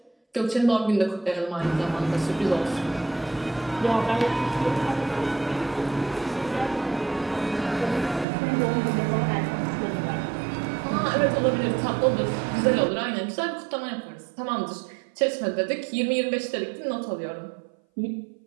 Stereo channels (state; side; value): drops out; left; at 8.2 s